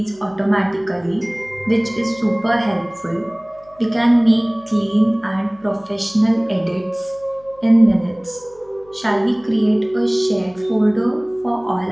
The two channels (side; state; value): left; noise; hum, 28 dB below the sound